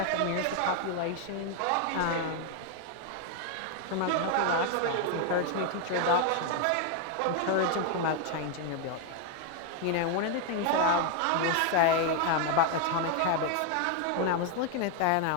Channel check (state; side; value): different; both; correlation 0.01